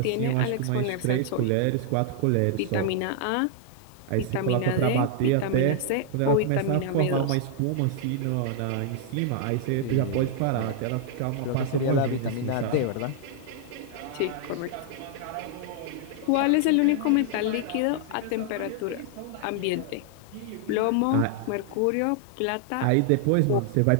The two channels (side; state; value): both; different; correlation 0.00